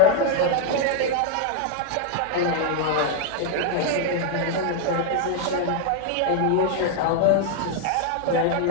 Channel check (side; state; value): both; different; correlation 0.00